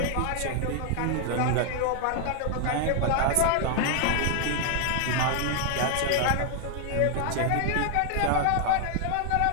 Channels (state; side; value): different; both; correlation 0.00